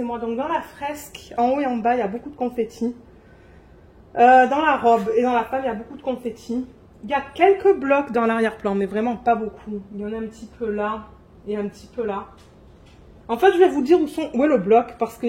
Donc dans la fresque, en haut et en bas, il y a beaucoup de confetti. Dans la robe et dans la femme, il y a beaucoup de confetti. Il y a quelques blocs dans l'arrière-plan, mais vraiment pas beaucoup. Il y en a un petit peu là et un petit peu là. En fait, je vais vous dire où est le bloc, parce qu'il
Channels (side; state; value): both; identical; correlation 1.00